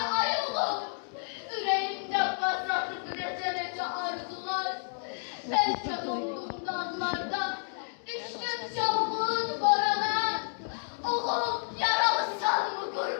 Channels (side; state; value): right; silent; digital silence